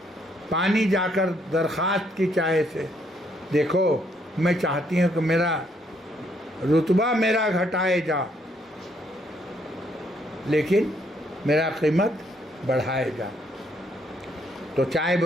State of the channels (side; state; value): both; normal; correlation 0.71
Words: پانی جا کر درخواست کی چائے سے، دیکھو میں چاہتی ہوں کہ میرا رتبہ میرا گھٹائے جا، لیکن میرا قیمت بڑھائے جا۔ تو چائے